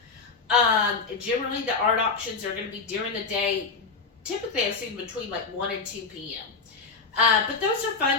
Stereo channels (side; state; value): right; quieter; 4.6 dB